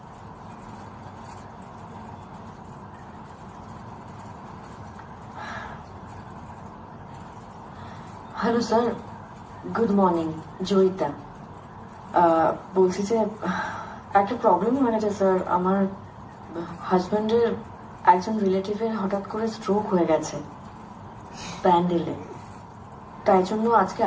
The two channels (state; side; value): identical; both; correlation 1.00